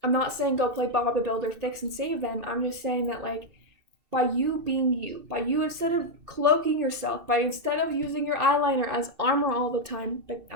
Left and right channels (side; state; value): left; late; 2.6 ms